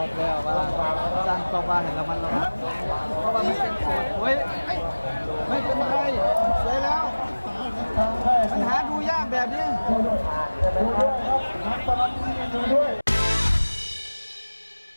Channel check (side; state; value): both; inverted; correlation -1.00